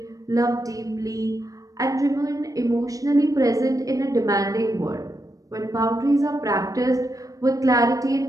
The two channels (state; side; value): late; left; 0.16 ms